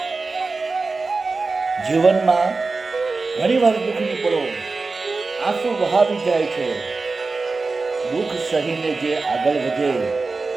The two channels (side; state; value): left; quieter; 3.9 dB